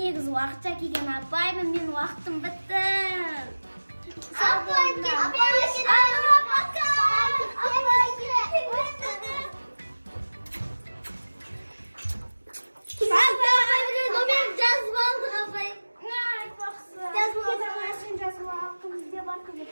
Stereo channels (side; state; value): both; inverted; correlation -1.00